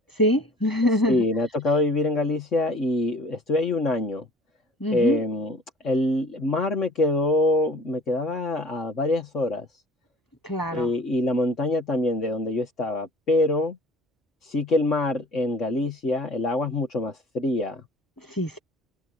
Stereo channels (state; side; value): normal; both; correlation 0.48